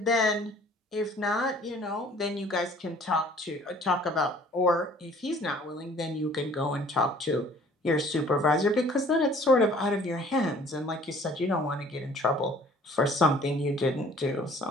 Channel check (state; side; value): normal; both; correlation 0.54